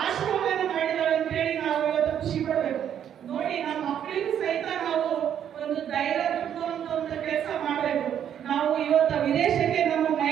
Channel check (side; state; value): left; quieter; 9.4 dB